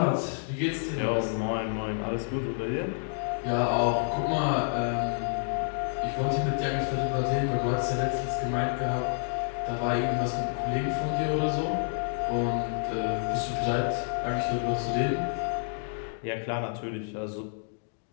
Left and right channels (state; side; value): silent; right; digital silence